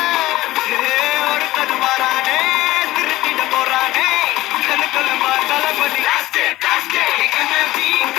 ஒருத்தது மாறானே திருத்திட போறானே கலுக்கலுமா தளபதி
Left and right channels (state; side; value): quieter; right; 17.1 dB